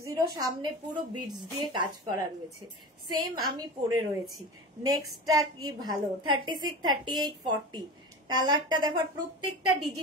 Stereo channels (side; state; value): both; normal; correlation 0.30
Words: সামনে পুরো বিটস দিয়ে কাজ করা রয়েছে, সেম আমি পরে রয়েছি। নেক্সটটা কি ভালো, 36 38 40 কালারটা দেখো, প্রত্যেকটা